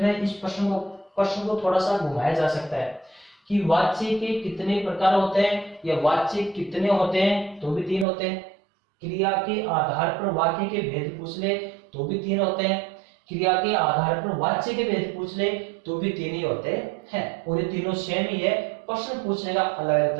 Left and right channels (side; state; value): left; drops out; at 8.1 s